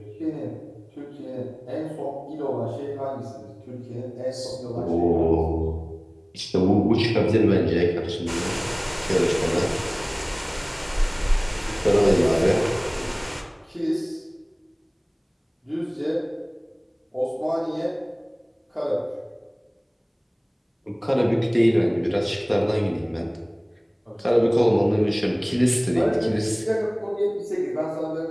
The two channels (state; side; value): identical; both; correlation 1.00